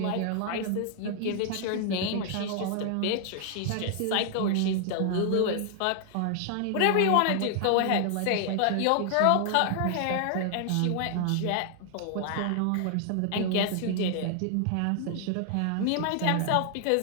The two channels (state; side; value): different; both; correlation 0.00